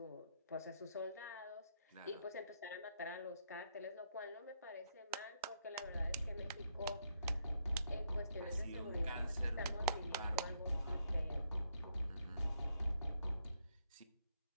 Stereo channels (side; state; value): both; inverted; correlation -0.75